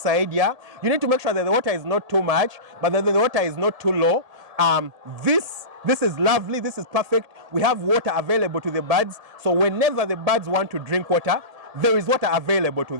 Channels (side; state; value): left; late; 1.8 ms